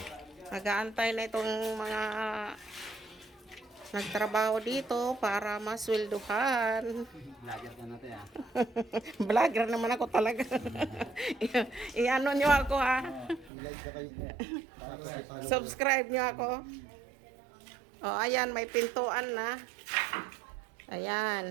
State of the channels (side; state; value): left; drops out; at 13.5 s